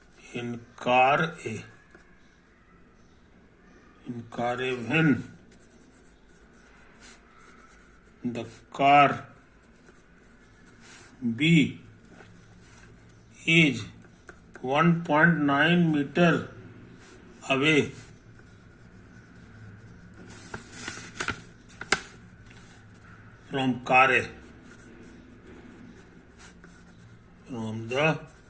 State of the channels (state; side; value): identical; both; correlation 1.00